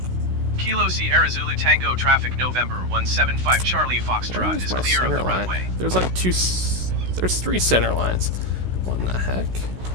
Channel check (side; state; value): left; late; 16 ms